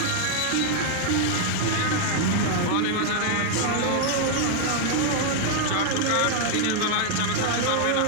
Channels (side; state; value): both; different; correlation 0.00